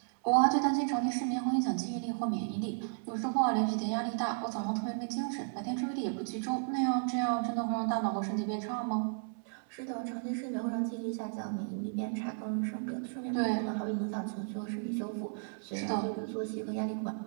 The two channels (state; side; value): silent; left; 55 dB below the other